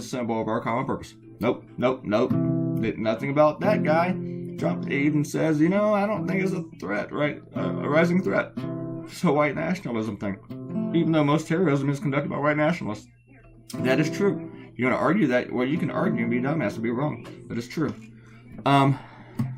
a symbol of our common purpose. Nope. Nothing about that guy. Trump even says, you know, I don't think it's a threat, right? A rising threat. It's a white nationalism thing. Even though most terrorism is conducted by white nationalists. That is true. You want to argue that? Well, you can argue and be dumbass and be wrong. But it's true. I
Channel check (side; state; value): both; identical; correlation 1.00